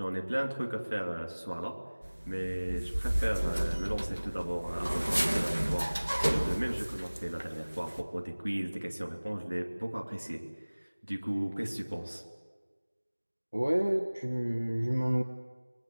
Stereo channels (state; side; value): inverted; both; correlation -1.00